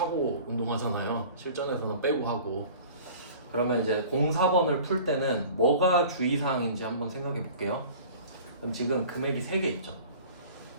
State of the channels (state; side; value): inverted; both; correlation -0.44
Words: 운동하잖아요. 실전에서는 빼고 하고. 그러면 이제 04번을 풀 때는 뭐가 주의사항인지 한번 생각해 볼게요. 그럼 지금 금액이 3개 있죠.